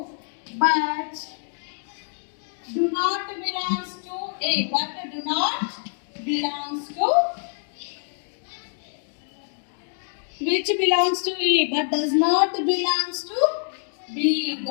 A but do not belongs to which belongs to A but does not belongs to B.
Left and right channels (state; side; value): silent; right; 61 dB below the other